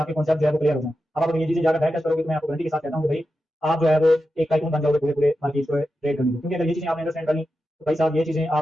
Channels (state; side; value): normal; both; correlation 0.90